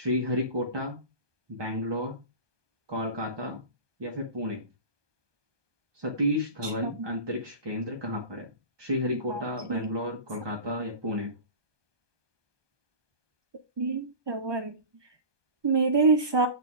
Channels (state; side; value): late; left; 1.2 ms